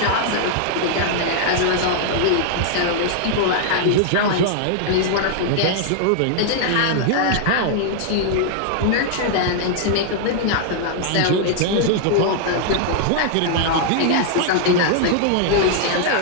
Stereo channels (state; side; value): different; both; correlation -0.01